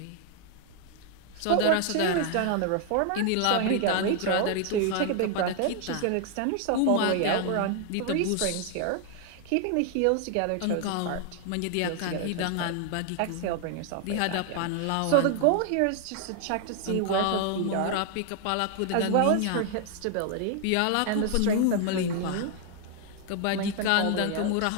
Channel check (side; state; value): both; different; correlation 0.00